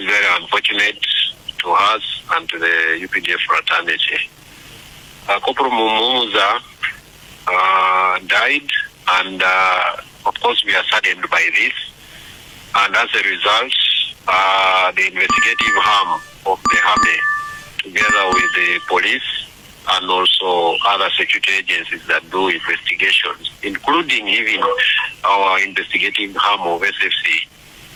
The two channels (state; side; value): identical; both; correlation 1.00